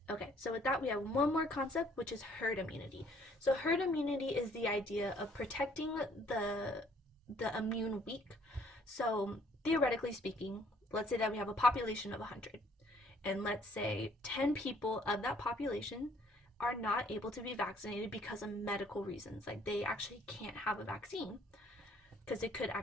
Okay, so with that, we have one more concept, which is herd immunity. So herd immunity is the idea of protecting the immune weak. So theoretically speaking, let's say that we have a population of 100. And let's say 10 people of that population are not able to be vaccinated because of medical reasons. Like they actually can't have a vaccine because it could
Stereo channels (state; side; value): normal; both; correlation 0.62